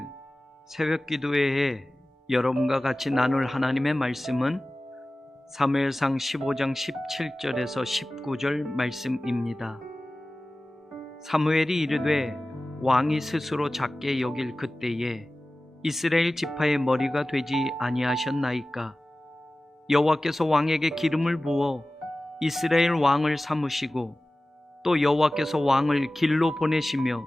새벽 기도회에 여러분과 같이 나눌 하나님의 말씀은 사무엘상 15장 17절에서 19절 말씀입니다. 사무엘이 이르되 왕이 스스로 작게 여길 그때에 이스라엘 지파의 머리가 되지 아니하셨나이까. 여호와께서 왕에게 기름을 부어 이스라엘 왕을 삼으시고 또 여호와께서 왕을 길로 보내시며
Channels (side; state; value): both; normal; correlation 0.97